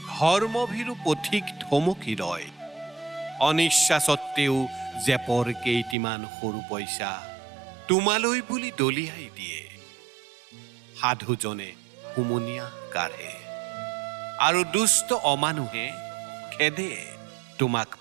ধৰ্মভীৰু পথিক থমকি ৰয়, অনিচ্ছা সত্ত্বেও জেপৰ কেইটিমান সৰু পইচা তোমালৈ বুলি দলিয়াই দিয়ে। সাধুজনে হুমুনিয়া কাঢ়ে আৰু দুষ্ট অমানুহে খেদে তোমাক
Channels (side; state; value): left; drops out; at 6.0 s